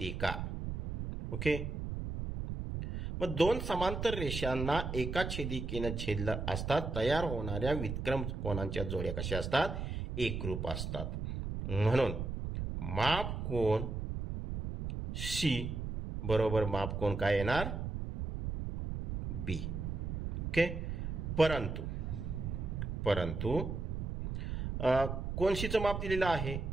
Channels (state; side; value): noise; right; rumble, 4 dB below the sound